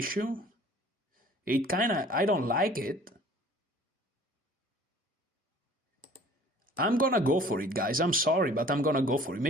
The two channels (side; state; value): both; normal; correlation 0.50